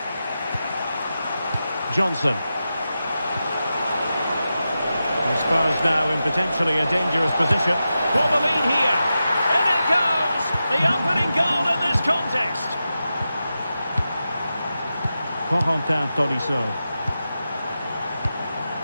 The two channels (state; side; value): inverted; both; correlation -0.91